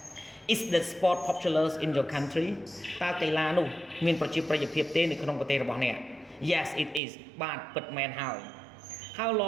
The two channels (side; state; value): left; drops out; at 7.0 s